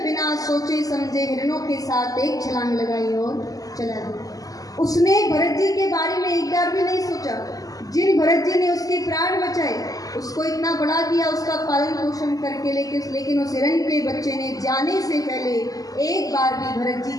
बिना सोचे समझे हिरणों के साथ एक छलांग लगाई और चला गया। उसने भरत जी के बारे में एक बार भी नहीं सोचा। जिन भरत जी ने उसके प्राण बचाए, उसको इतना बड़ा किया, उसका पालन पोषण करके, लेकिन उस हिरण के बच्चे ने जाने से पहले एक बार भी भरत जी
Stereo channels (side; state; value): right; late; 0.17 ms